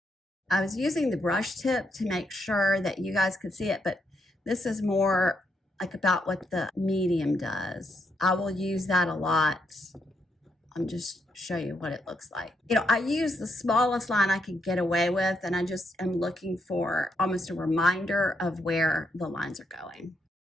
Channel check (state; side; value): normal; both; correlation 0.78